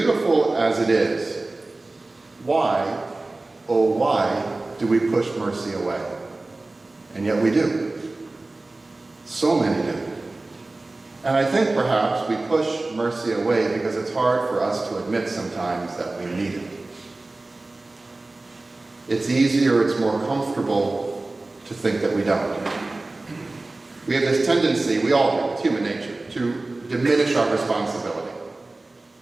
as it is, why, oh why, do we push mercy away? And yet we do. So many do. And I think perhaps we push mercy away because it's hard for us to admit sometimes that we need it. It's easier, it's more comfortable to think that we don't. We have this tendency, we all do, it's human nature, to diminish our responsibility.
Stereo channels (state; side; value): quieter; left; 3.1 dB